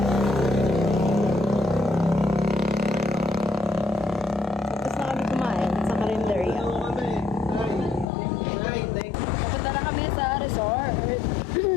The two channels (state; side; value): drops out; right; at 8.1 s